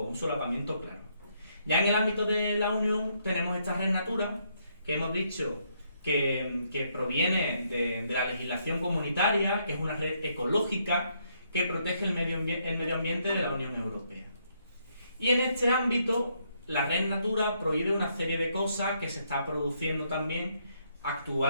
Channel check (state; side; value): inverted; both; correlation -0.73